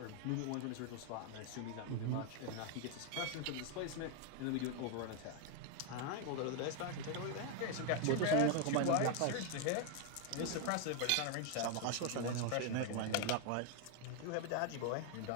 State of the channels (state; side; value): different; both; correlation 0.01